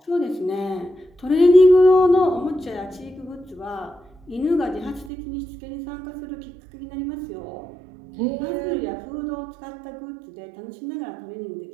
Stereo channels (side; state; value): left; drops out; at 5.1 s